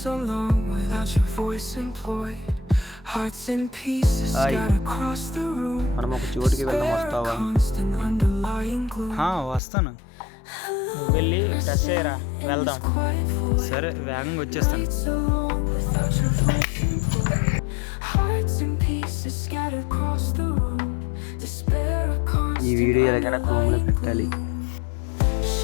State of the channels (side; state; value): right; drops out; at 9.6 s